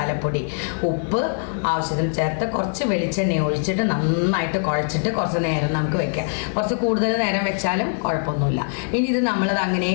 ഉപ്പ് ആവശ്യത്തിന് ചേർത്ത് കുറച്ച് വെളിച്ചെണ്ണ ഒഴിച്ചിട്ട് നന്നായിട്ട് കുഴച്ചിട്ട് കുറച്ച് നേരം നമുക്ക് വെക്കാം. കുറച്ച് കൂടുതൽ നേരം വെച്ചാലും കുഴപ്പമൊന്നുമില്ല. ഇനി ഇത് നമ്മളത് അങ്ങനെ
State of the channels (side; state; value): right; silent; 64 dB below the other